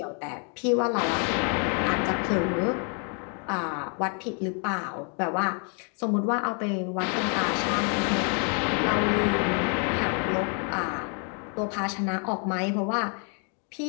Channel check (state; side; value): quieter; right; 39.8 dB